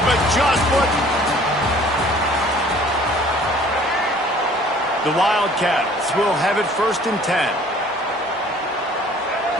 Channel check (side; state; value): both; normal; correlation 0.53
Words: but just what... The Wildcats will have it 1st and 10.